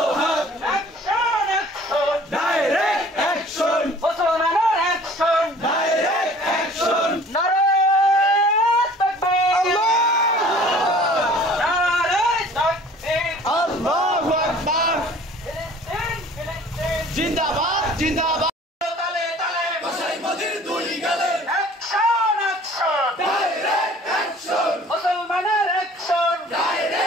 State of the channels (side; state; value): both; normal; correlation 0.50